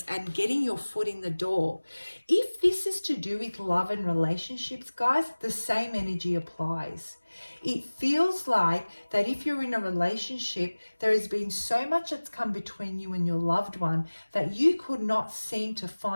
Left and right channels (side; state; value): both; inverted; correlation -1.00